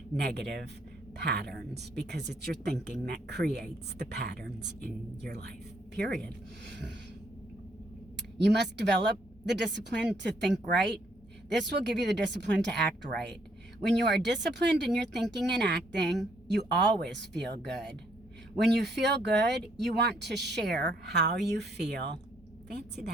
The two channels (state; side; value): normal; both; correlation 0.69